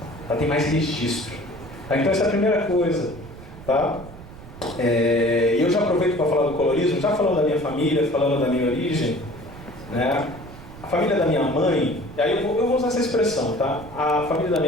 Tá? Tem mais registro. Tá? Então essa é a primeira coisa. Tá? Eu já aproveito para falar do colorismo, já falando da minha família, falando da minha origem. Né? A família da minha mãe, e aí eu vou usar essa expressão, tá? A família da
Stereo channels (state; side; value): noise; right; rumble, 16 dB below the sound